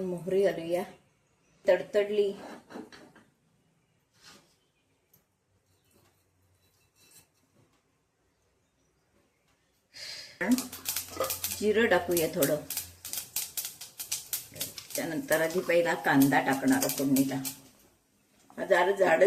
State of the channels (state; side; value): identical; both; correlation 1.00